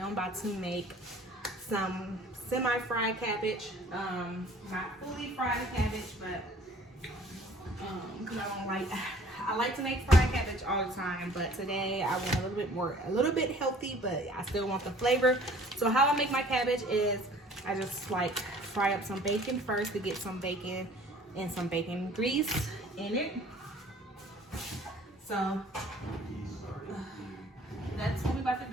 about to make some semi-fried cabbage. Not fully fried cabbage, but because I like to make fried cabbage all the time, but today I went a little bit healthy, but I still want the flavor. So how I make my cabbage is I just like fry up some bacon first to get some bacon and some bacon grease in it. So that's what we're about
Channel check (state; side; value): normal; both; correlation 0.52